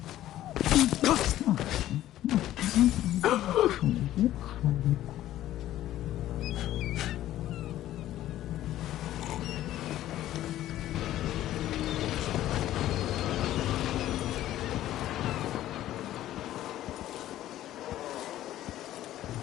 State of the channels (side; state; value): right; quieter; 13.5 dB